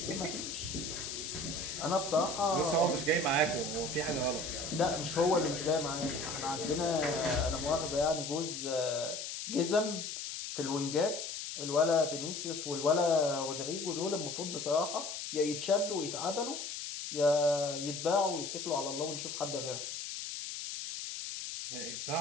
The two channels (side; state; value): left; noise; hiss, 6 dB below the sound